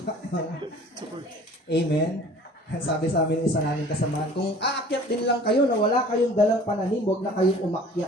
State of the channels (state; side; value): normal; both; correlation 0.48